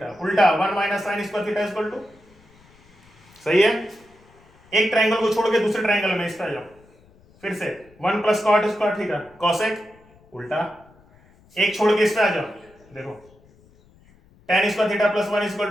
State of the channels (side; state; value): left; noise; rumble, 29 dB below the sound